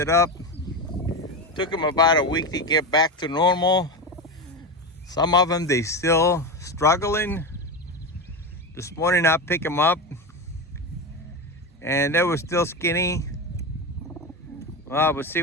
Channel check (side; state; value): both; normal; correlation 0.19